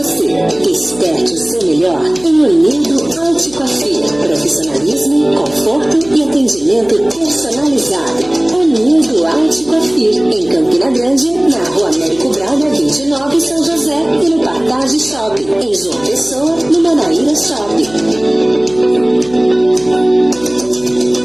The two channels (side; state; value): right; noise; hum, 20 dB below the sound